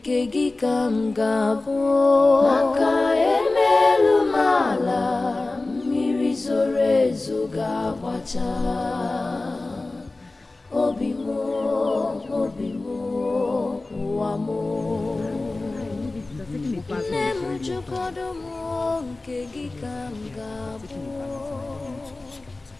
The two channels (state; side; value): quieter; right; 3.2 dB